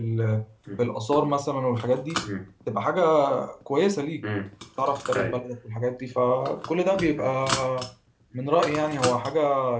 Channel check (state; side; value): identical; both; correlation 1.00